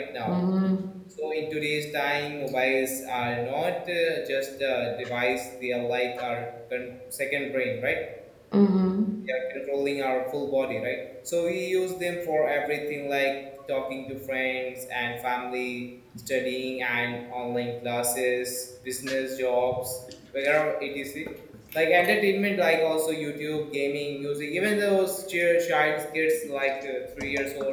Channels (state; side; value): identical; both; correlation 1.00